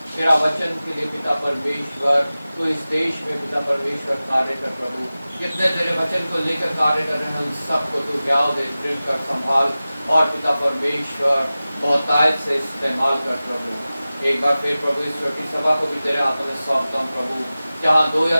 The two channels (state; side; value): inverted; both; correlation -0.96